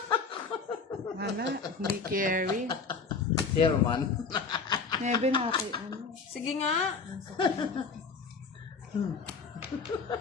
Wala, hindi carry. Chairman. Never na okay. Ano? Sige nga.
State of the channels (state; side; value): quieter; right; 4.8 dB